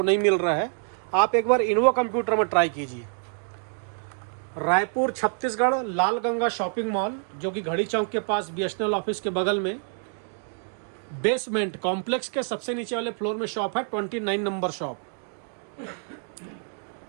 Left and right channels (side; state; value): left; silent; 60 dB below the other